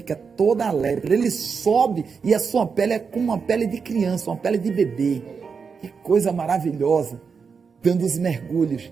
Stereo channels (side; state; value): left; quieter; 5.7 dB